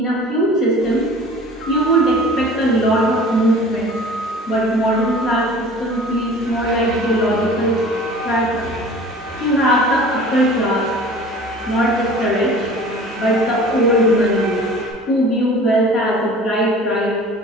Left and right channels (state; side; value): normal; both; correlation 0.44